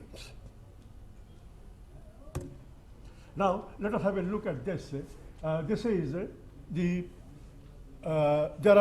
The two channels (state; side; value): identical; both; correlation 1.00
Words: Now, let us have a look at this. This is there